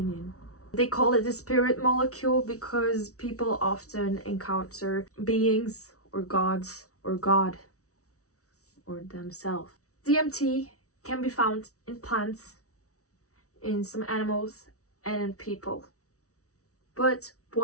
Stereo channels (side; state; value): right; late; 0.65 ms